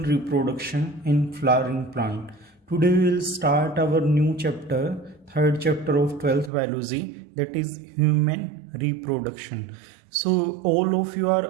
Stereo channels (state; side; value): drops out; left; at 6.5 s